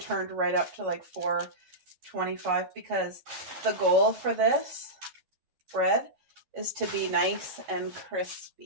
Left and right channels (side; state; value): left; late; 12 ms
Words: right up to like 425 because the goal for this bread is to be nice and